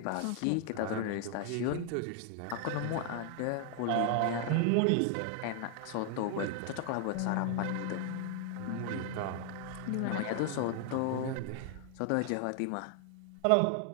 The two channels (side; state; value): both; different; correlation 0.00